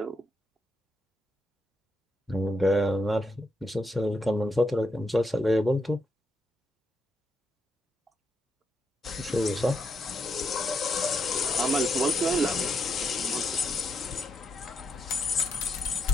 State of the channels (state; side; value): normal; both; correlation 0.81